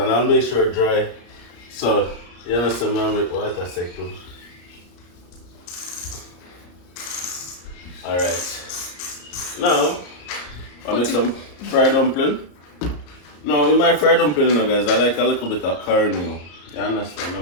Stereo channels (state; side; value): late; right; 34 ms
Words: I'll make sure it dry. So, you know, some man make water sick too. Alright. Now, I'll make some fried dumpling. Now, with my fried dumpling, you know, guys, I like a little bit of cornmeal. You understand?